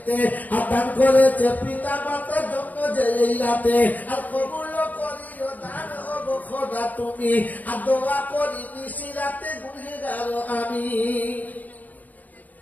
আর দান করেছে পিতা মাতার জন্য যে রাতে। আর কবুল করিও দান হব খোদা তুমি, আর দোয়া করি নিশি রাতে গুনহেগার আমি।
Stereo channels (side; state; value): right; late; 0.080 ms